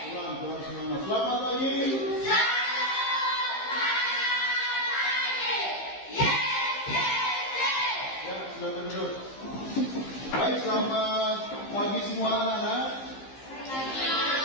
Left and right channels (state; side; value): late; right; 15 ms